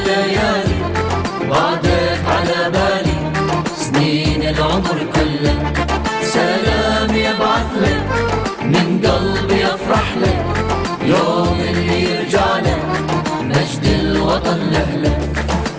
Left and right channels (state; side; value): identical; both; correlation 1.00